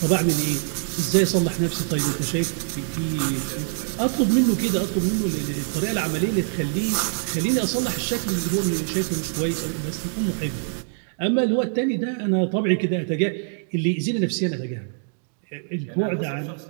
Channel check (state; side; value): silent; left; 62 dB below the other